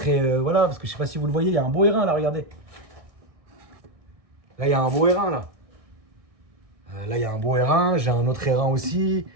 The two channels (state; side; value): late; left; 1.6 ms